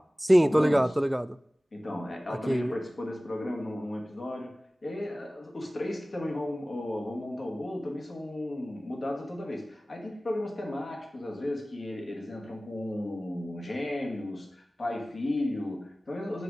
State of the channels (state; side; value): normal; both; correlation 0.98